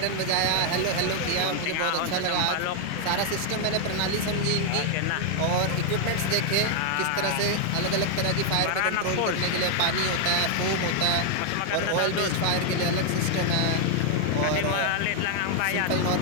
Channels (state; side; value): different; both; correlation 0.00